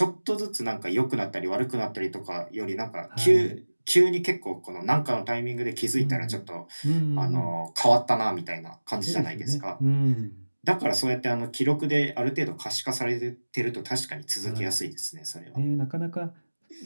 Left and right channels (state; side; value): inverted; both; correlation -1.00